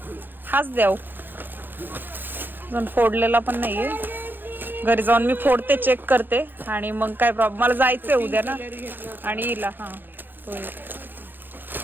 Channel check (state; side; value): late; left; 0.093 ms